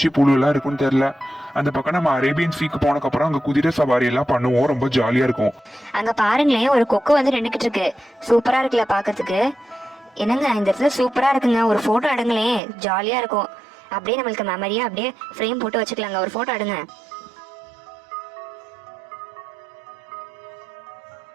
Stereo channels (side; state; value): left; drops out; at 12.6 s